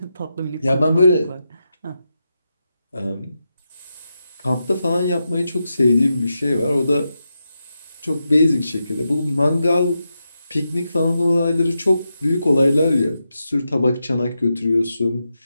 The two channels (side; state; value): both; inverted; correlation -0.88